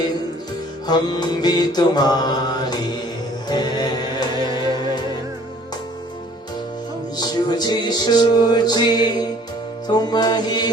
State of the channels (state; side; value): normal; both; correlation 0.55